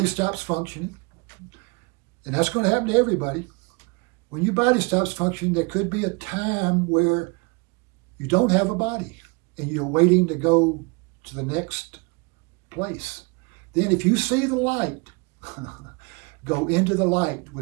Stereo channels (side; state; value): left; quieter; 30.2 dB